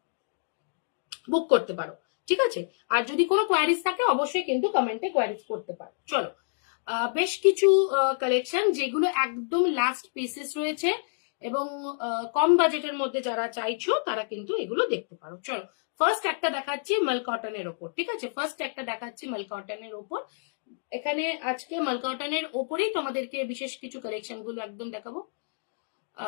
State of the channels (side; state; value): right; silent; digital silence